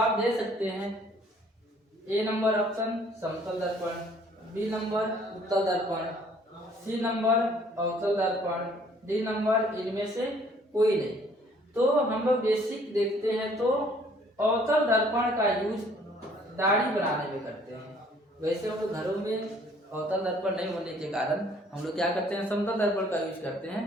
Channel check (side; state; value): both; normal; correlation 0.59